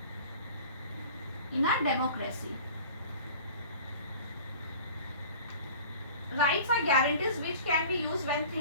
in a democracy. Rights are guarantees which can be used when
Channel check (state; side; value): inverted; both; correlation -0.43